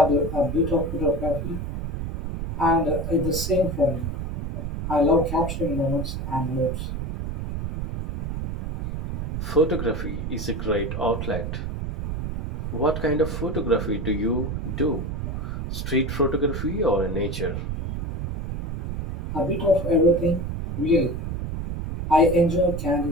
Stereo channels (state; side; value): noise; right; rumble, 4 dB below the sound